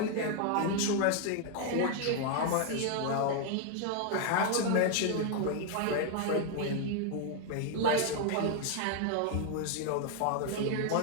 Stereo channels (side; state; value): both; different; correlation 0.00